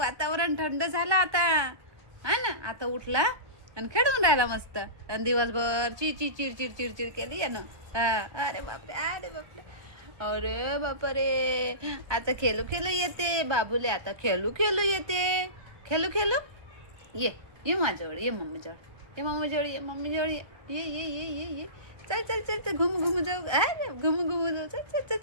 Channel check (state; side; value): late; left; 1.3 ms